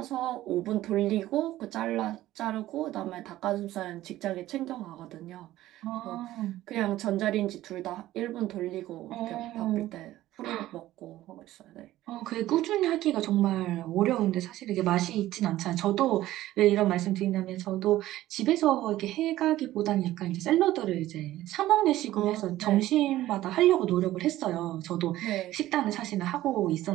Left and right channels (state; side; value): quieter; left; 15.0 dB